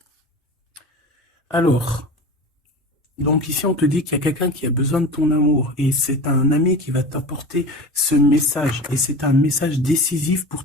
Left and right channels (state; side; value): normal; both; correlation 0.32